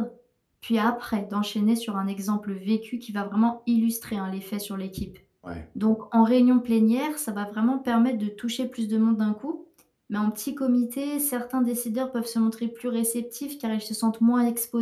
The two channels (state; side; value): identical; both; correlation 1.00